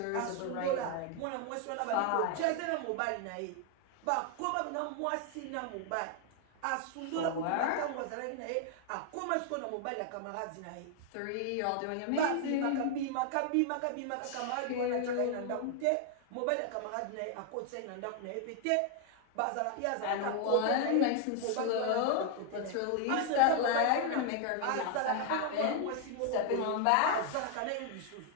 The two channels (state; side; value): different; both; correlation 0.00